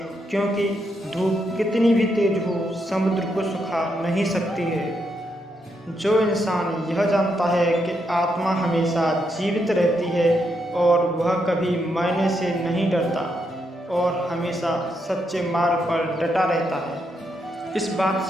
क्योंकि धूप कितनी भी तेज हो, समुद्र को सुखा नहीं सकती है। जो इंसान यह जानता है कि आत्मा हमेशा जीवित रहती है और वह कभी मरने से नहीं डरता और हमेशा सच्चे मार्ग पर डटा रहता है, इस बात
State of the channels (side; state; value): both; normal; correlation 0.80